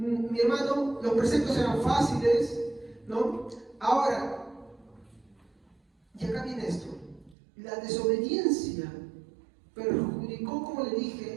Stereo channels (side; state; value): left; drops out; at 7.4 s